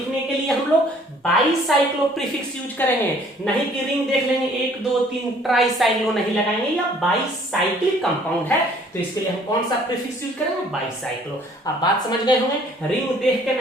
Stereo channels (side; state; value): both; normal; correlation 0.58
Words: के लिए हम लोग बाईसाइक्लो प्रीफिक्स यूज करेंगे, नहीं कि रिंग देख लेंगे 1 2 3 ट्राईसाइक्लो नहीं लगाएंगे, या बाईसाइक्लिक कंपाउंड है तो इसके लिए हम कौन सा प्रीफिक्स यूज करेंगे, बाईसाइक्लो। अब बात समझ गए होंगे, रिंग देख के